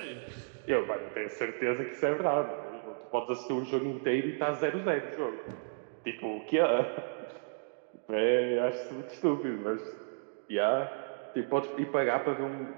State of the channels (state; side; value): silent; left; digital silence